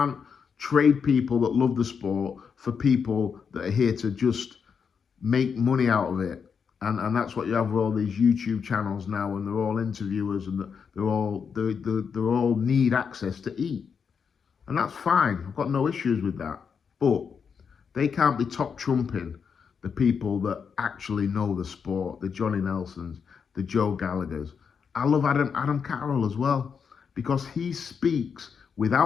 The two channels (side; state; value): right; quieter; 6.4 dB